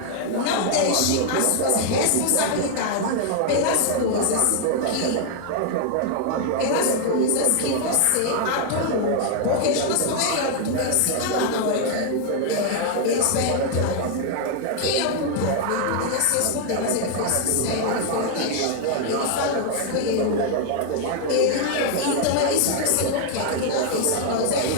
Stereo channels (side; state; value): both; different; correlation 0.00